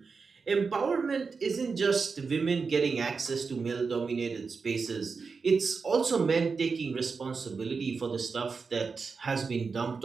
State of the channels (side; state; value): left; quieter; 4.9 dB